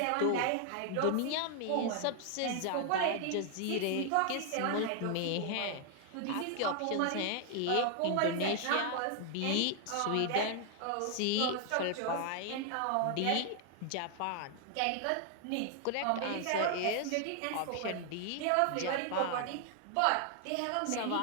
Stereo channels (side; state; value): both; different; correlation 0.00